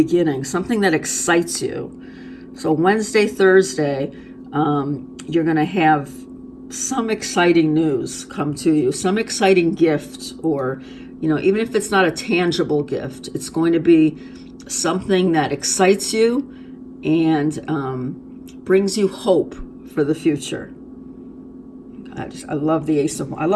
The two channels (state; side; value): identical; both; correlation 1.00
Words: something that excites you. So Wednesday, Thursday, you're going to have some exciting news come to you, some exciting gift, or, even if it's not a tangible gift, it's going to be something that excites you and brings you hope for the future. I love the I